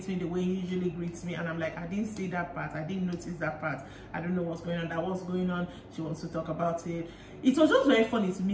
me the way he usually greets me. And I'm like, I didn't see that part. I didn't notice that part. I don't know what's going on. That was going on. She wants to talk about it. It was just very funny to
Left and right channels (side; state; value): both; identical; correlation 1.00